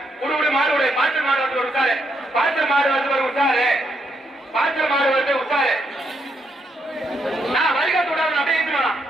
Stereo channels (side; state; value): both; normal; correlation 0.78